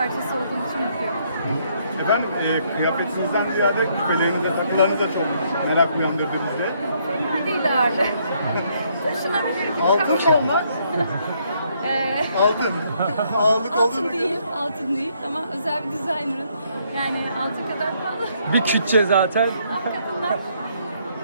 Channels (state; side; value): inverted; both; correlation -0.70